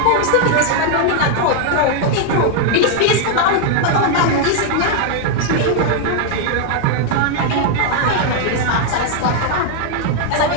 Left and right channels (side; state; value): both; different; correlation 0.00